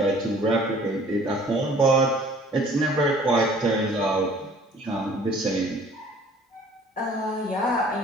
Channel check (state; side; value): normal; both; correlation 0.53